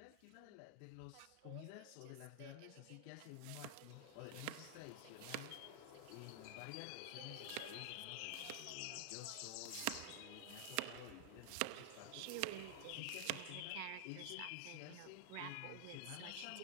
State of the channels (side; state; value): both; different; correlation -0.01